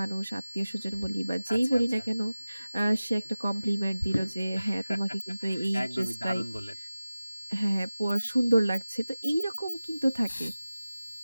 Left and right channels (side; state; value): both; inverted; correlation -0.96